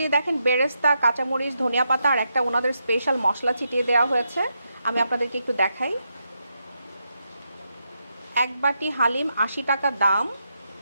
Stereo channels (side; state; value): both; inverted; correlation -0.83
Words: দেখেন বেরেস্তা, কাঁচামরিচ, ধনিয়া পাতা আর একটা ওনাদের স্পেশাল মশলা ছিটিয়ে দেওয়া হয়েছে। আমি আপনাদেরকে একটু দেখাই। এক বাটি হালিম 80 টাকা দাম।